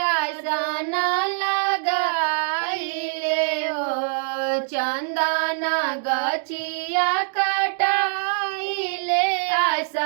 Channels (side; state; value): left; silent; digital silence